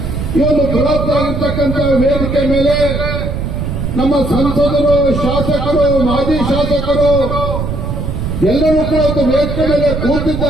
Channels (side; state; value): right; noise; rumble, 3 dB below the sound